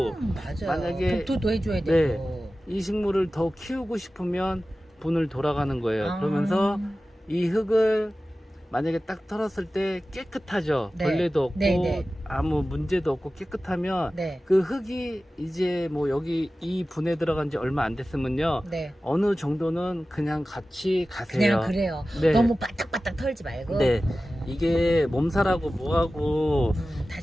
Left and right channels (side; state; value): both; normal; correlation 0.96